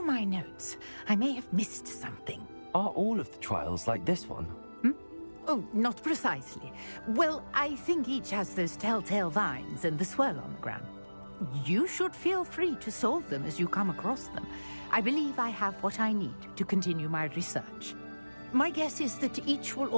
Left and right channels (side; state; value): both; inverted; correlation -1.00